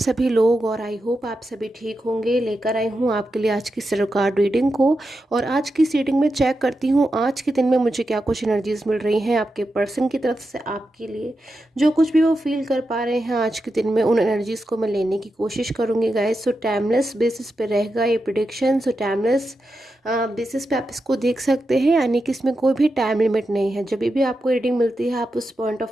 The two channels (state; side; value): normal; both; correlation 0.88